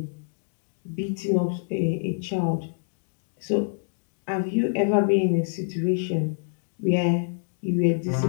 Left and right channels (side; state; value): right; silent; digital silence